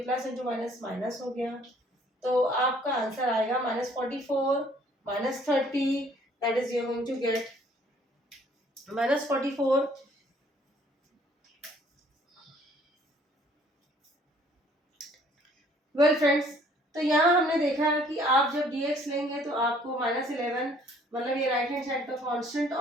इंटू माइनस माइनस हो गया, तो आपका आंसर आएगा -44 -30, that is you are going to get -44। Well friends, तो यहाँ हमने देखा कि आप जब dx लेंगे तो आपको -11, मतलब ये राइट हैंड साइड का कांस्टेंट,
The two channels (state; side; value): normal; both; correlation 0.59